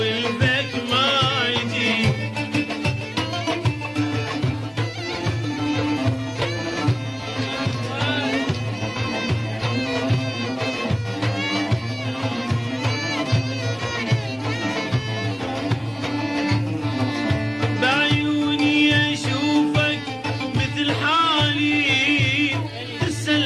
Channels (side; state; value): both; identical; correlation 1.00